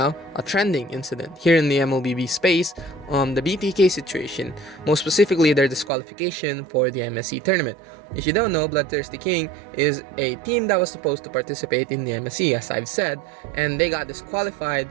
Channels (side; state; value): left; drops out; at 5.9 s